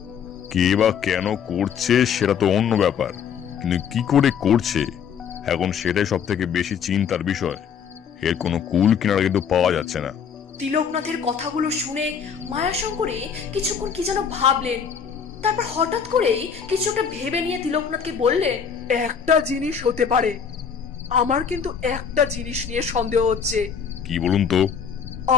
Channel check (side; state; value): right; quieter; 7.1 dB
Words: কে বা কেন করছে সেটা তো অন্য ব্যাপার, কিন্তু কি করে করছে এখন সেটাই সব থেকে বেশি চিন্তার বিষয়। এর কোনো কুল কিনারা কিন্তু পাওয়া যাচ্ছে না। তিলকনাথের কথাগুলো শুনে মায়াশঙ্করী কিছুক্ষণ কি যেন ভাবলেন। তারপর হঠাৎ করেই কিছু একটা ভেবে নিয়ে তিলকনাথকে বললেন, একটা জিনিস হতে পারে। আমার কিন্তু একটা জিনিস নিয়ে সন্দেহ হচ্ছে। কি বলুন তো?